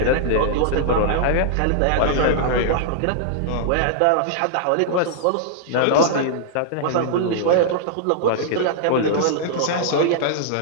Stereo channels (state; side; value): different; both; correlation -0.01